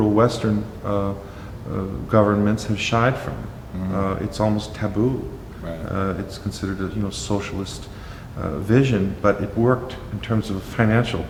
Western governments have shied from. It's almost taboo. Right. It's considered a socialist vision, but it worked in terms of a financial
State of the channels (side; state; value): both; identical; correlation 1.00